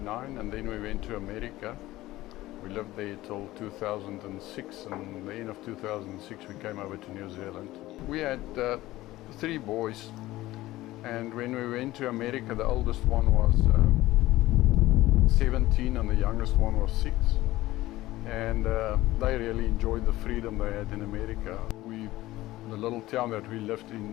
and then we went to America. We lived there till 2006, and the end of 2006 we came over to New Zealand. We had 3 boys, and when we went to America, the oldest one was 17 and the youngest one was 6. And they really enjoyed the freedom they had in America. The little town that we lived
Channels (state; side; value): quieter; right; 17.0 dB